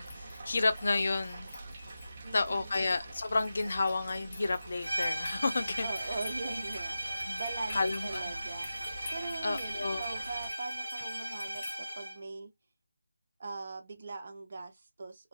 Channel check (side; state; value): both; inverted; correlation -0.93